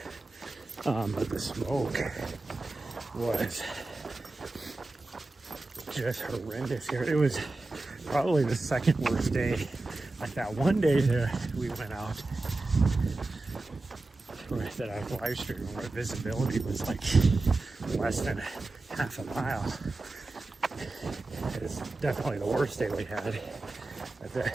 But the smoke was just horrendous here. It was probably the second worst day. Like that one day that we went out, that I live streamed, where visibility was like less than half a mile. It's definitely the worst day we had.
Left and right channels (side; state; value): left; quieter; 3.2 dB